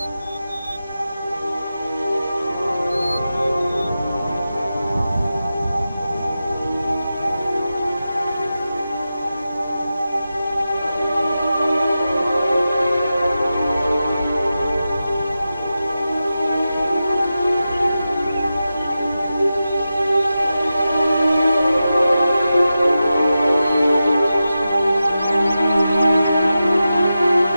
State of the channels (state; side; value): inverted; both; correlation -0.92